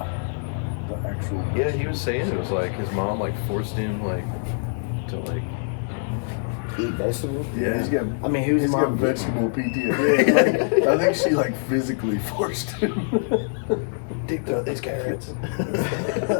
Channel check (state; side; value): silent; right; digital silence